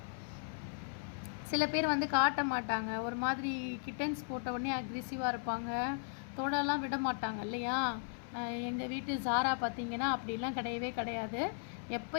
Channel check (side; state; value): right; silent; 53 dB below the other